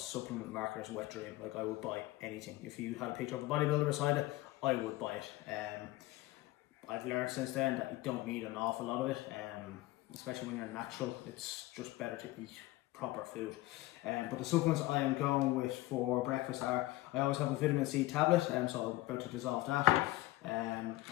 marketer's wet dream. Like, I would buy anything. If you had a picture of a bodybuilder beside it, I would buy it. I've learned since then that you don't need an awful lot of it. Especially when you're natural, it's just better to eat proper food. But the supplements I am going with for breakfast are, I always have a vitamin C tablet, so I'm about to dissolve that.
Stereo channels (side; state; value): right; quieter; 18.2 dB